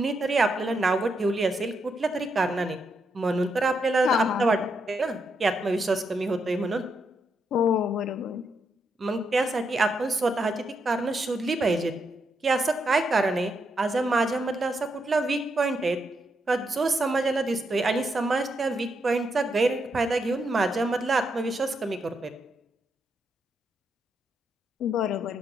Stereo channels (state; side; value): normal; both; correlation 0.80